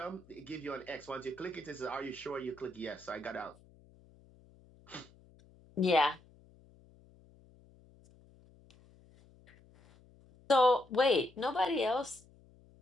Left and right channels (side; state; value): left; noise; hum, 26 dB below the sound